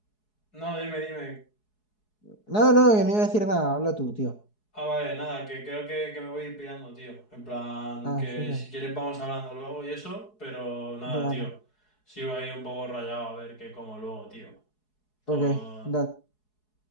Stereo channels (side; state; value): right; late; 4.7 ms